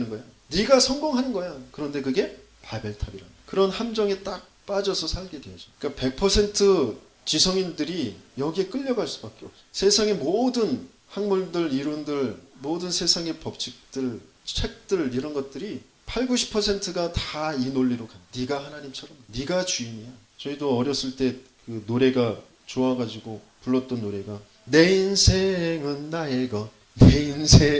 거야. 네가 성공하는 거야. 그런데 그게 바벨탑이라는 그런 함정에 딱 빠져서 살게 되죠. 그러니까 100% 지성인들이 여기에 끌려갈 수밖에 없어요. 세상의 모든 학문들, 이론들, 모든 세상의 법칙들, 책들 이런 것들이 80, 90%가 다 이 논리로 가. 네가 하나님처럼, 네가 주인이야. 저희도 어렸을 때 그 노래가 좋아가지고 불렀던 노래가 내 인생은 나의 것, 내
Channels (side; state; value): both; identical; correlation 1.00